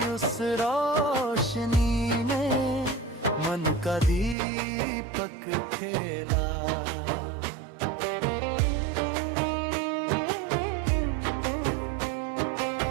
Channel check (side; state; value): left; drops out; at 4.4 s